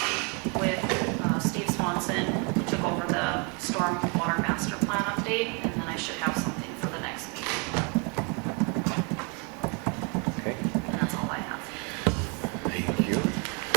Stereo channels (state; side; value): quieter; left; 33.6 dB